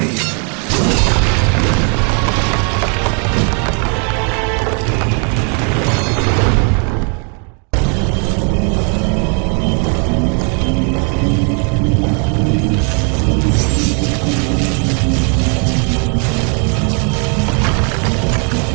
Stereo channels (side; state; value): left; quieter; 38.8 dB